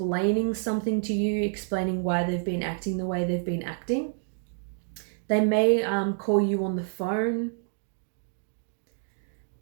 something to you, explaining why they've been acting the way they've been acting. They may call you on the phone.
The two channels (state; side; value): silent; left; 55 dB below the other